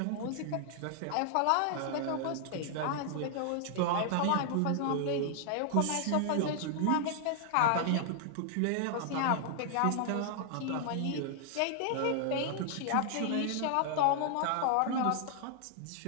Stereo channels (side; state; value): both; different; correlation 0.00